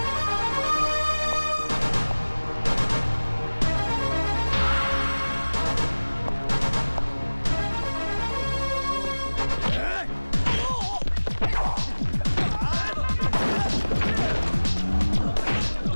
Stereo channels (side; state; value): both; inverted; correlation -1.00